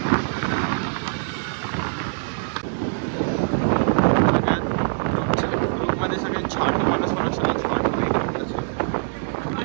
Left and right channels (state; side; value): silent; left; digital silence